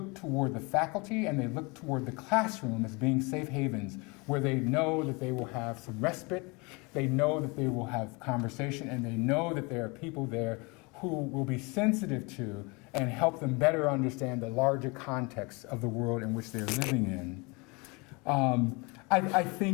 toward the faculty and they look toward the classroom as being safe havens where they know that they will have some respite, they know that they will have conversation, and they know that there are people there who will be sensitive to and help them better understand the larger context of the world in which they're living in. I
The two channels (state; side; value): quieter; right; 28.3 dB